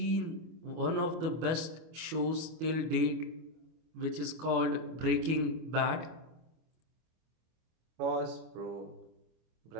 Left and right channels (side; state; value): left; late; 25 ms